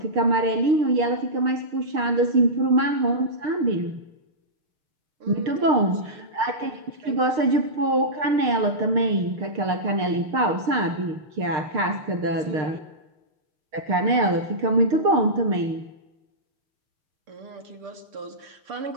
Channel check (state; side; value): late; left; 6.6 ms